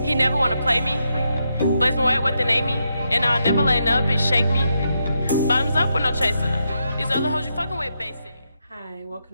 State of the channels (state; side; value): inverted; both; correlation -0.83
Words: He never wanna play me. Blaise Moet with the name me. And I'll never let no bitch shake me. Bottoms up with no chaser. These other hoes you fucking with basic. Hi, welcome